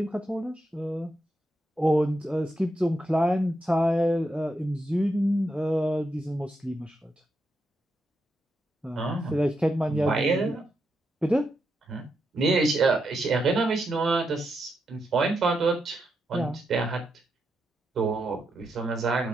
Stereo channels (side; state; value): both; normal; correlation 0.84